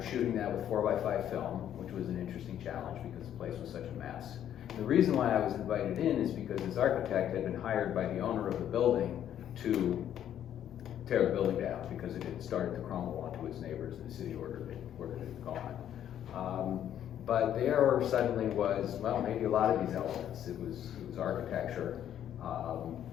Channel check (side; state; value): right; quieter; 10.5 dB